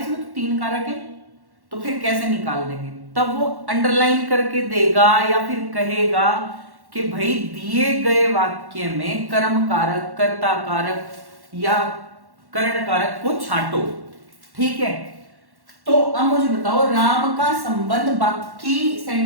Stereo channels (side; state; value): left; late; 1.1 ms